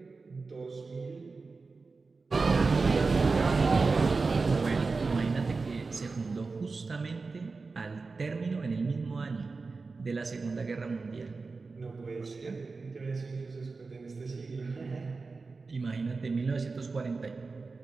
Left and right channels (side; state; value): left; quieter; 4.1 dB